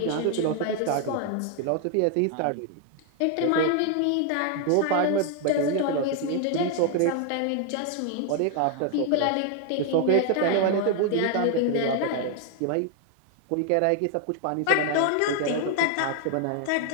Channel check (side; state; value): both; different; correlation 0.00